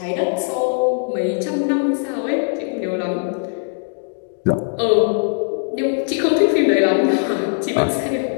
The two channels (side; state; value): right; silent; digital silence